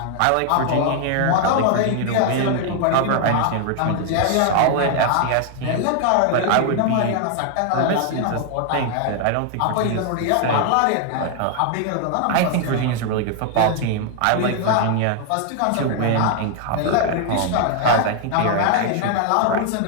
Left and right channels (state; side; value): different; both; correlation 0.00